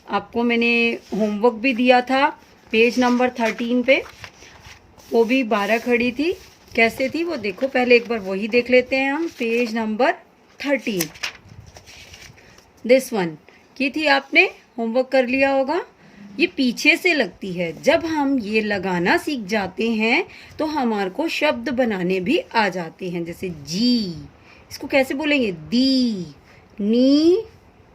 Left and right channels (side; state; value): both; identical; correlation 1.00